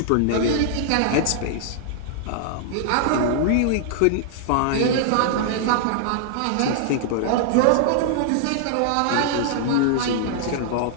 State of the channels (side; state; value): both; different; correlation -0.01